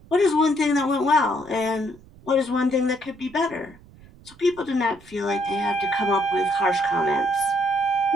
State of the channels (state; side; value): noise; right; rumble, 24 dB below the sound